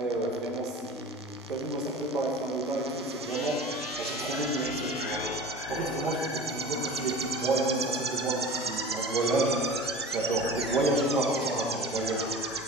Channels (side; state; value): both; normal; correlation 0.37